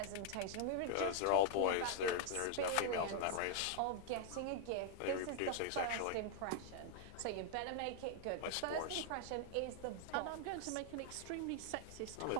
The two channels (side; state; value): both; different; correlation 0.00